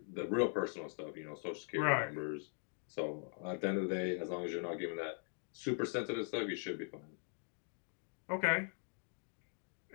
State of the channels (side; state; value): right; silent; 50 dB below the other